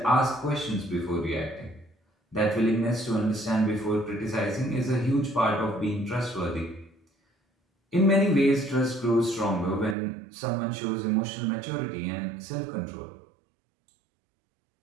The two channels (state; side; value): drops out; left; at 10.0 s